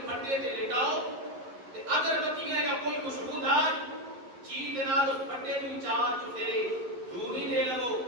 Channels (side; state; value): left; late; 11 ms